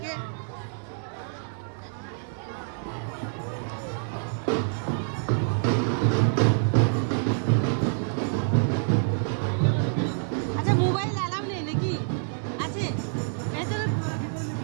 আচ্ছা, মোবাইল অ্যালাউ নেই নাকি? আছে ভেতরে?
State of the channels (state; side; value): silent; left; 60 dB below the other